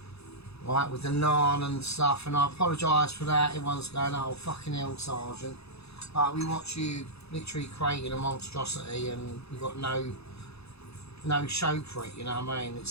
right, with the naan and stuff, and I apologise for that. Everyone's going, oh fucking hell, Sergeant. But we watch you literally creating a monstrosity, and we've got no show for it, you know what I mean?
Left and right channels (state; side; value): late; right; 0.79 ms